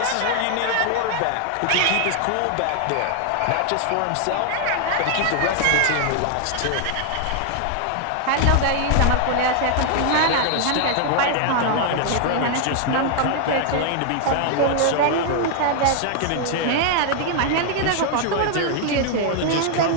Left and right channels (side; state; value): both; different; correlation 0.00